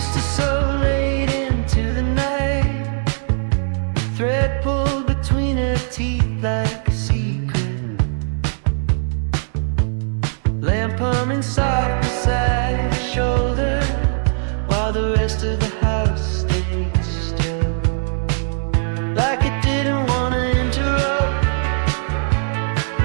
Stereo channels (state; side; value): silent; left; 61 dB below the other